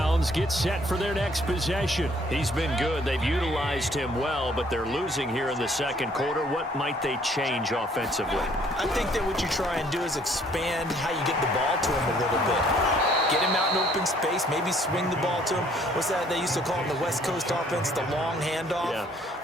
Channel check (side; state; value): both; normal; correlation 0.62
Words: gets set for their next possession. He's been good. They've utilized him well, but they're losing here in the second quarter. What might they change offensively? I think that what you try and do is expand how you get the ball to him a little bit. Get him out in open space, maybe swing the ball to him. What's that they used to call in the West Coast offense, the long handoff? Yeah.